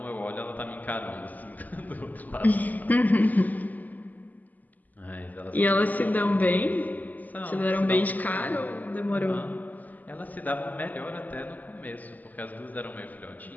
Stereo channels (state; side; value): late; right; 0.081 ms